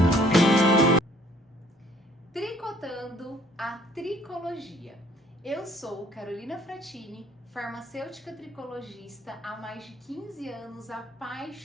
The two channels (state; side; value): normal; both; correlation 0.60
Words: Tricotando a tricologia. Eu sou Carolina Fratini, farmacêutica tricologista há mais de 15 anos,